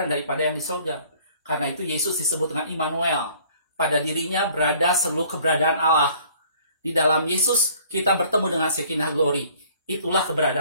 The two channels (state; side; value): inverted; both; correlation -0.56